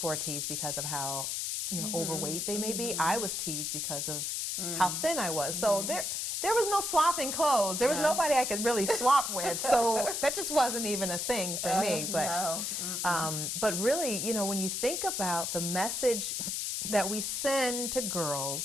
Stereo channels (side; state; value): left; noise; hiss, 1 dB below the sound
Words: are teased because of how, you know, overweight they may be. I was teased because of how thin I was. So there was no swapping clothes. There was nobody I could really swap with. So that just wasn't even a thing for me. But but really, you know, when you think about the message that we send to